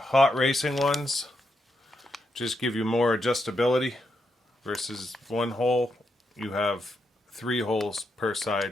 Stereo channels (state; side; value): normal; both; correlation 0.82